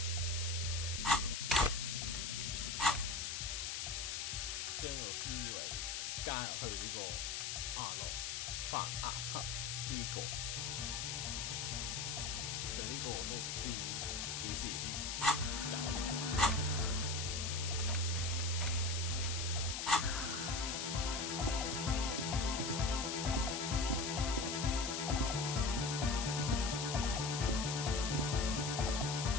將個思維加入去呢個亞諾范亞克呢個，就呢個我都唔知幾時先搞掂。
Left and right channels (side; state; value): left; noise; hiss, 2 dB below the sound